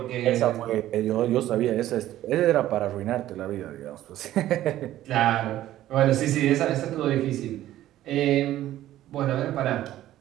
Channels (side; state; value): left; quieter; 13.7 dB